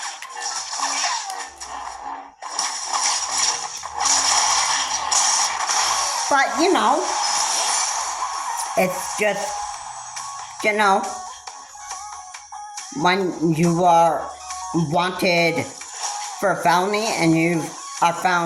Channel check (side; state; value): both; identical; correlation 1.00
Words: it's just, when you are wanted for a felony and you are